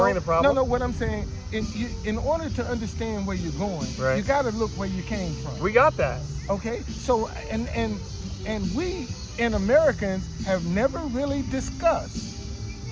the problem? No, what I'm saying, in order to understand where you're going, you got to look where you came from. We got that. Okay, so and we in Americans have never really discussed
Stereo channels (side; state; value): both; identical; correlation 1.00